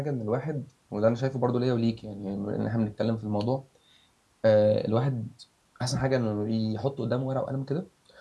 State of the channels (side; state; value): both; identical; correlation 1.00